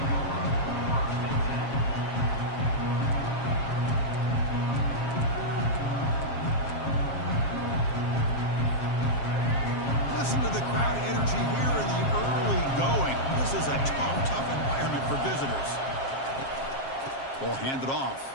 Listen to the crowd energy here in the early going. This is a tough environment for visitors. Ball handed off.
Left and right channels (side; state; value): right; late; 7.4 ms